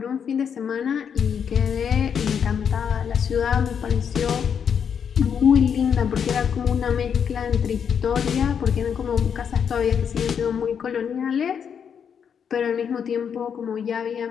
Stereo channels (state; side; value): quieter; right; 7.5 dB